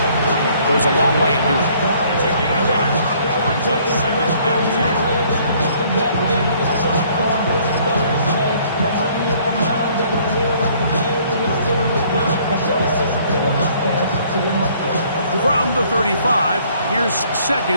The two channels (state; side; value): inverted; both; correlation -0.61